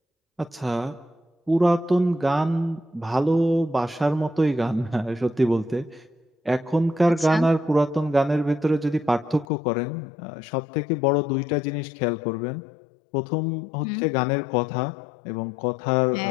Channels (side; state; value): right; drops out; at 9.5 s